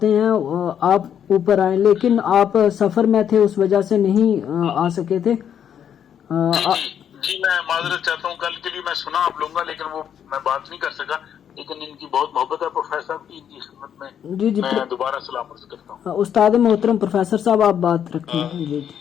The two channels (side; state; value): right; quieter; 8.9 dB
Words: ہیں، آپ اوپر آئیں، لیکن آپ سفر میں تھے اس وجہ سے نہیں آ سکے تھے. جی میں معذرت چاہتا ہوں، کل کے لیے میں سنا آپ لوں گا لیکن وہ میں بات نہیں کر سکا. لیکن ان کی بہت محبت ہے پروفیسر صاحب کی، ان کی خدمت میں جی میں دوبارہ سلام عرض کرتا ہوں. استاد محترم پروفیسر صاحب آپ بات رکھیں. جی